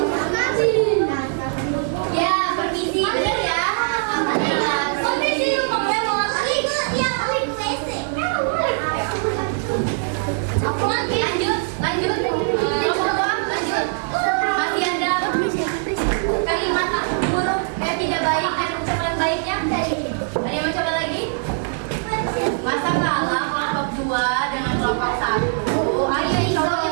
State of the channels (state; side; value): silent; left; 65 dB below the other